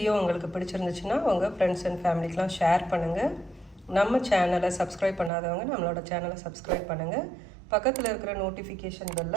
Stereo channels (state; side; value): drops out; left; at 5.3 s